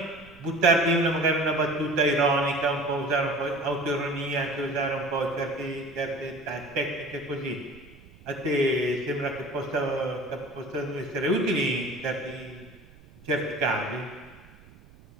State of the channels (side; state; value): right; noise; rumble, 23 dB below the sound